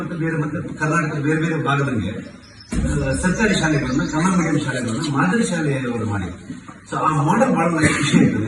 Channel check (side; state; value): both; identical; correlation 1.00